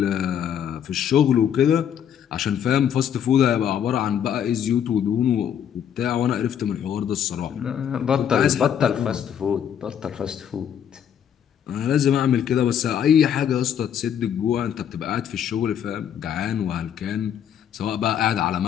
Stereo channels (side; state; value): right; quieter; 9.0 dB